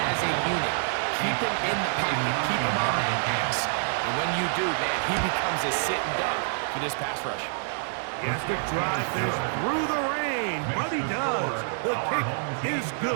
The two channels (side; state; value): left; silent; digital silence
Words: as a unit. Keep him in the pocket. Keep him on that X. And when you do, man, he becomes a sit and duck for this pass rush. He has to drive this through the rain, but he does. The kick is